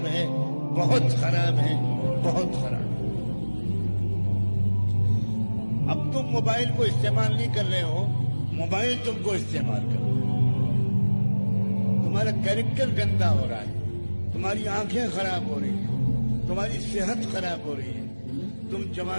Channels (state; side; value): inverted; both; correlation -1.00